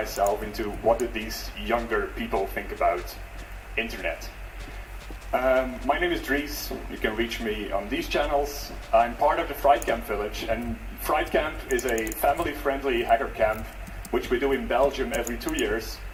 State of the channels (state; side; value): identical; both; correlation 1.00